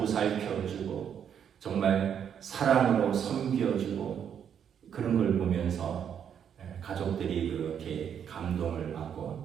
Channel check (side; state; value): left; quieter; 8.4 dB